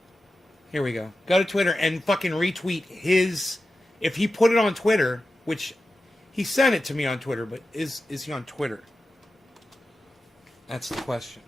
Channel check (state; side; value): normal; both; correlation 0.93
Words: Here we go. Go to Twitter and fucking retweet his... If he put it on Twitter, which he sent it to me on Twitter, but is he on Twitter? That's the question.